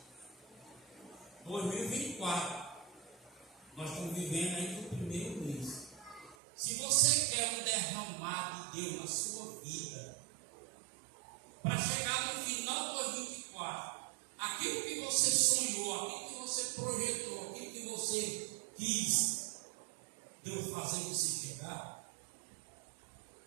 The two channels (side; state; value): left; drops out; at 6.4 s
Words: 2024, nós estamos vivendo aí no primeiro mês. Se você quer um derramar de Deus na sua vida, para chegar no final de 2024, aquilo que você sonhou, aquilo que você projetou, aquilo que você quis, Deus fazer você chegar,